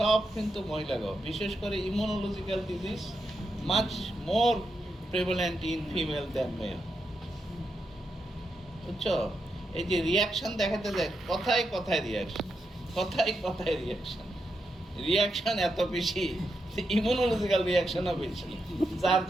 কিন্তু মহিলারাও। বিশেষ করে immunological disease much more prevalent in female than male. বুঝছো? এই যে রিয়াকশন দেখাতে যায়, কথায় কথায় রিয়াকশন, কথায় কথায় রিয়াকশন, রিয়াকশন এত বেশি, ইমিউনোলজিক্যাল রিয়াকশনও বেশি, যার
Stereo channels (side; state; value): both; normal; correlation 0.84